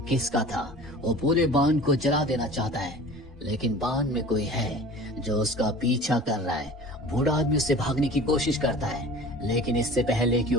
किसका था। वो पूरे बांध को जला देना चाहता है, लेकिन बांध में कोई है जो उसका पीछा कर रहा है। बूढ़ा आदमी उससे भागने की कोशिश करता है, लेकिन इससे पहले कि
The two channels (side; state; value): both; normal; correlation 0.41